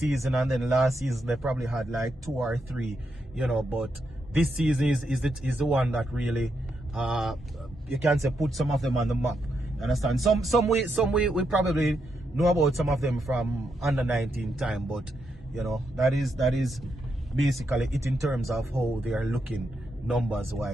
and then last season they probably had like 2 or 3, you know, but this season is the one that really you can say put some of them on the map. You understand? Some we probably know about some of them from under 19 time, but you know, that is basically it in terms of how they are looking numbers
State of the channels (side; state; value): both; normal; correlation 0.82